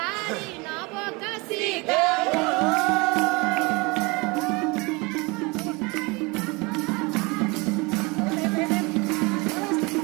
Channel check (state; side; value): quieter; left; 26.5 dB